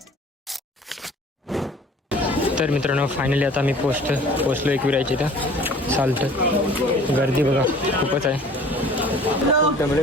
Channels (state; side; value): normal; both; correlation 0.49